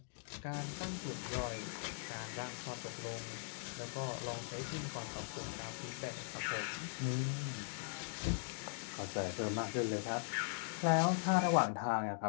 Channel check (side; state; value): right; silent; digital silence